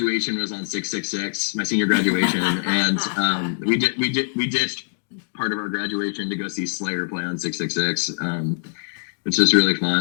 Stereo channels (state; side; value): silent; right; digital silence